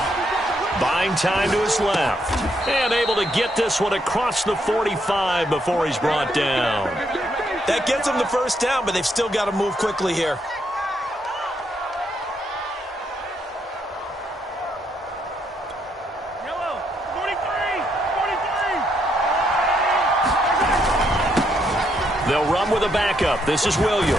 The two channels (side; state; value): both; normal; correlation 0.75